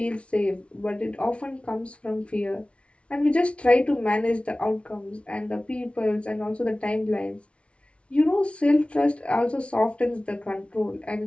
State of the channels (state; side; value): late; right; 0.061 ms